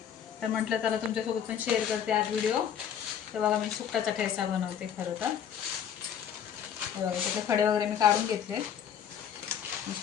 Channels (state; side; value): quieter; right; 8.8 dB